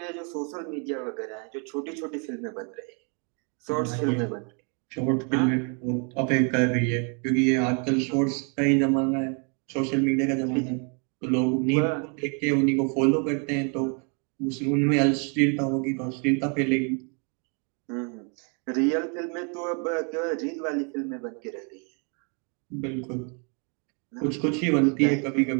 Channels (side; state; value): left; quieter; 37.9 dB